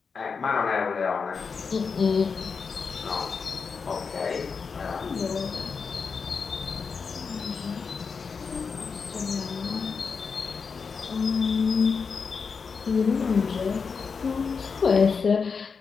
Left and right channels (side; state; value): right; quieter; 5.4 dB